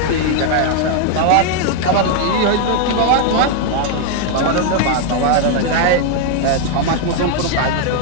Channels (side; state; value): both; different; correlation 0.00